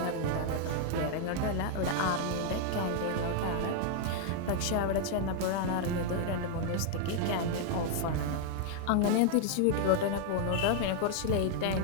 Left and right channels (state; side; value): different; both; correlation 0.00